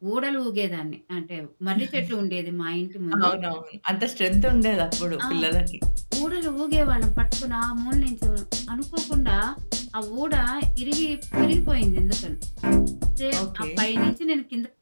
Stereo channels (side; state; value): both; inverted; correlation -1.00